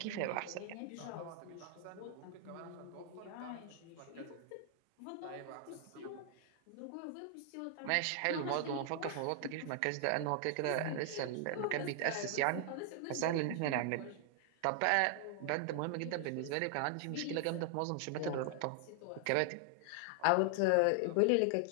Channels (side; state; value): both; different; correlation 0.00